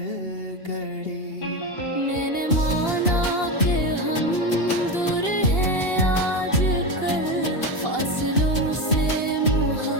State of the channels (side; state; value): right; late; 2.8 ms